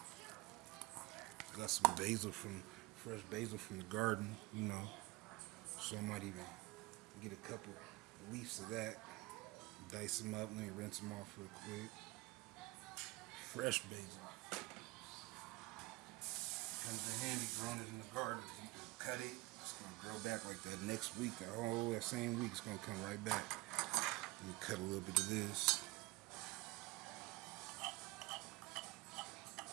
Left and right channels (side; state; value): left; quieter; 22.1 dB